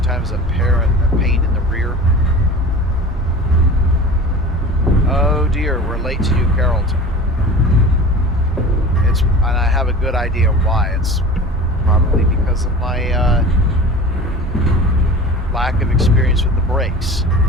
a pain in the rear. Oh dear, we're late to New Carrollton. And I have a good idea why. It's probably because of my lack of experience with the brakes.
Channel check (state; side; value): normal; both; correlation 0.38